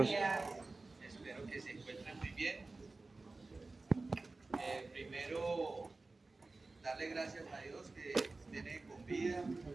días. Espero que se encuentren muy bien. Primero, darle gracias a Dios que nos tiene con vida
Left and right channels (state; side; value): quieter; left; 3.4 dB